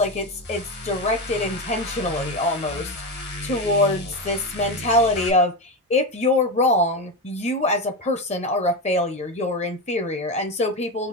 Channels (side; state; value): both; normal; correlation 0.16